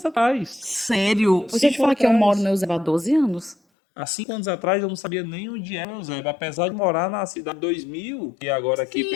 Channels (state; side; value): drops out; right; at 3.6 s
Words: atrás. Sério? Deixa eu te 5 falar que eu atrás. moro no Eusébio há 12 anos. Há 5 anos atrás eu não sabia nem onde era o Eusébio, apesar de morar na cidade 2000 e agora aqui Sim,